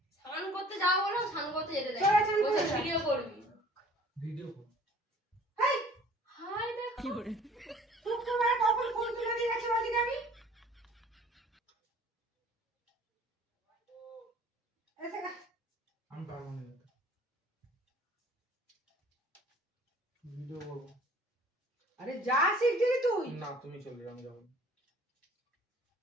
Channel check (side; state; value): both; normal; correlation 0.51